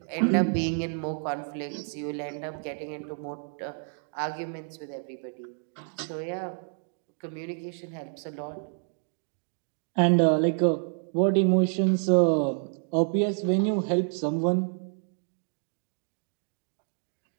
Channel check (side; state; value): left; silent; 59 dB below the other